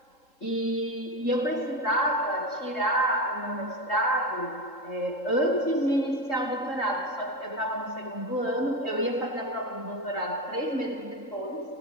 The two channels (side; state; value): right; late; 3.7 ms